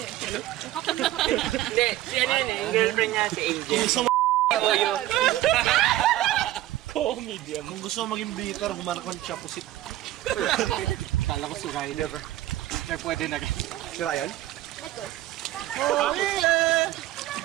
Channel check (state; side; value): quieter; left; 15.1 dB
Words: Hindi, si ano yun eh. Yung girlfriend niya, si Angel. Comedian. Kung gusto mo maging bitter, humanap ka ng chapusit. Kala ko si Ryan. Sir, pwede na. Si Ryan? Ito.